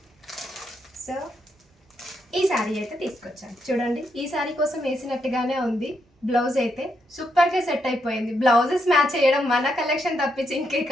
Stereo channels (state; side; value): normal; both; correlation 0.79